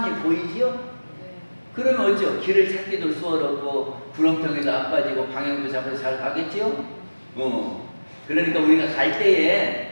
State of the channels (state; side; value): inverted; both; correlation -1.00